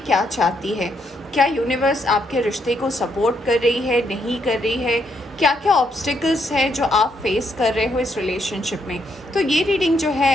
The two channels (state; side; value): normal; both; correlation 0.75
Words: चाहती है? क्या यूनिवर्स आपके रिश्ते को सपोर्ट कर रही है, नहीं कर रही है? क्या क्या ऑब्स्टिकल्स है जो आप फेस कर रहे हो इस रिलेशनशिप में? तो ये रीडिंग जो